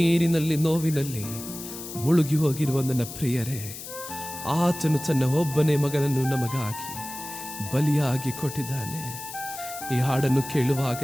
ನೋವಿನಲ್ಲಿ ಮುಳುಗಿ ಹೋಗಿರುವ ನನ್ನ ಪ್ರಿಯರೇ, ಆತನು ತನ್ನ ಒಬ್ಬನೇ ಮಗನನ್ನು ನಮಗಾಗಿ ಬಲಿಯಾಗಿ ಕೊಟ್ಟಿದ್ದಾನೆ. ಈ ಹಾಡನ್ನು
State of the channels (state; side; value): noise; left; hiss, 11 dB below the sound